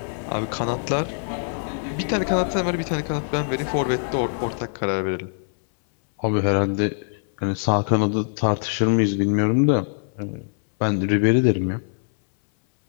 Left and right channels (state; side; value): silent; right; 63 dB below the other